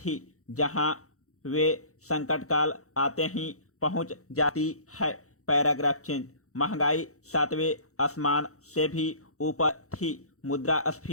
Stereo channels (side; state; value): right; late; 0.65 ms